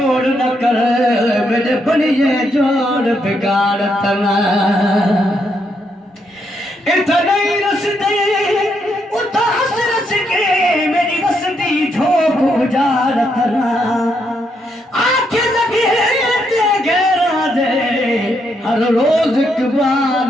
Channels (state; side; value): normal; both; correlation 0.77